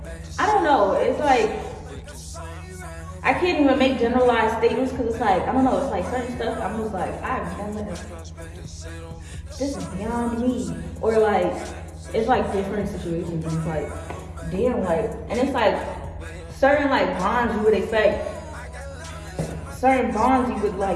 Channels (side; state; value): both; identical; correlation 1.00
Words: I don't know. It's like I can't even make generalized statements because it's like, I don't know. It's like certain stuff. I'm just like, I've never. This is beyond me. Or like, it's like different situations. And it's like, damn, like, and it's like certain like bonds you would expect. Certain bonds you would